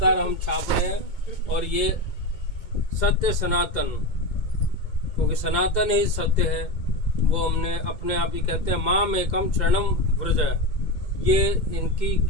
हम छाप रहे हैं। और ये सत्य सनातन, क्योंकि सनातन ही सत्य है, वो हमने अपने आप ही कहते हैं माम एकम शरणम व्रज। ये इनकी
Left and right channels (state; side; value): late; right; 2.2 ms